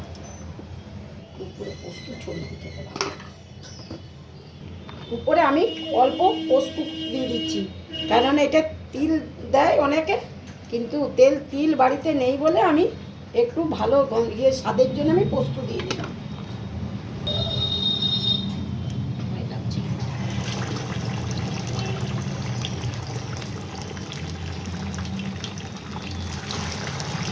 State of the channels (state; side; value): identical; both; correlation 1.00